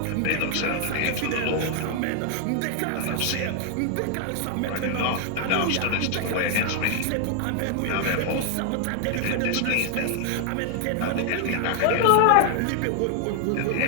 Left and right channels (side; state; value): both; different; correlation 0.00